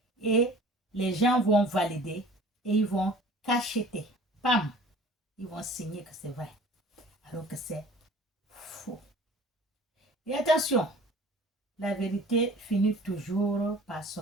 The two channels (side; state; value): both; normal; correlation 0.46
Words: Et les gens vont valider et ils vont cacheter. Pam! Ils vont signer que c'est vrai. Alors que c'est faux. Et attention, la vérité finit toujours par